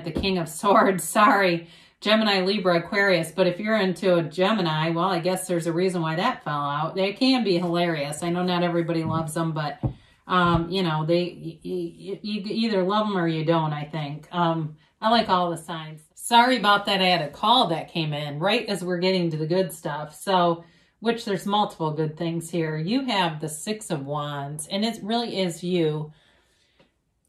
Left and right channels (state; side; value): identical; both; correlation 1.00